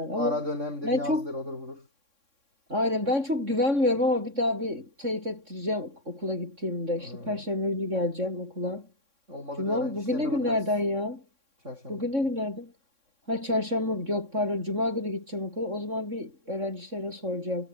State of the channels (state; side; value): late; left; 3.6 ms